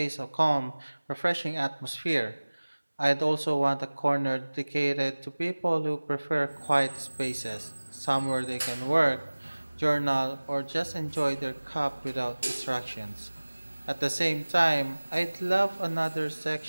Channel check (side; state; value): both; inverted; correlation -1.00